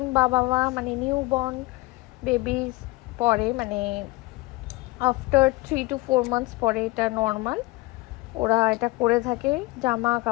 বাবা মা মানে নিউ বর্ন বেবিজ পরে, মানে আফটার 3 to 4 months পরে এটা নর্মাল। ওরা এটা করে থাকে। জামা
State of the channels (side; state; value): right; quieter; 22.0 dB